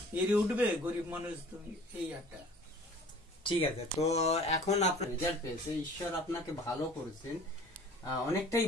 এড়ে উঠবে গরিব মানুষ তুমি, এই একটা। ঠিক আছে, তো এখন আপনার রেজাল্ট পেয়েছে, ঈশ্বর আপনাকে ভালো করেছেন, অনেকটাই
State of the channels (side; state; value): both; normal; correlation 0.47